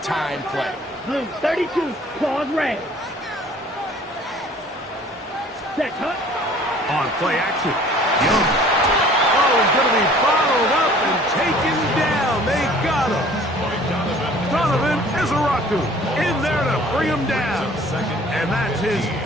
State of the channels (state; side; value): normal; both; correlation 0.51